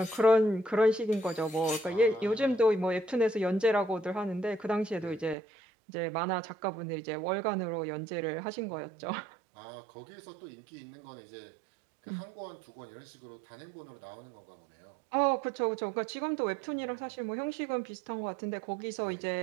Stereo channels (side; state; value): left; drops out; at 5.4 s